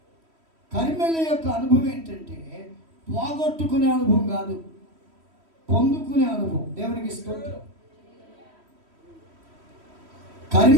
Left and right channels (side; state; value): left; late; 3.1 ms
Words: కర్మెల యొక్క అనుభవం ఏంటంటే పోగొట్టుకునే అనుభవం కాదు, పొందుకునే అనుభవం. దేవునికి స్తోత్రం.